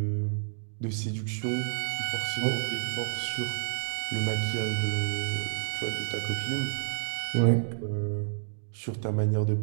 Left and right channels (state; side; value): silent; left; digital silence